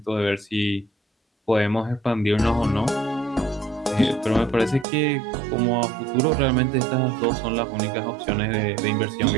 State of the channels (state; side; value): drops out; left; at 4.9 s